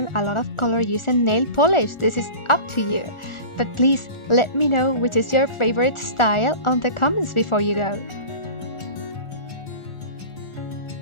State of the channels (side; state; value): right; late; 1.4 ms